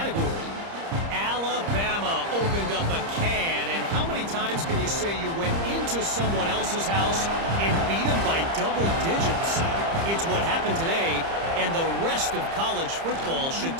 Alabama opened up a can, and how many times can you say you went into someone else's house and beat them by double digits? It's what happened today, and the rest of college football should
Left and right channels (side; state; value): left; late; 30 ms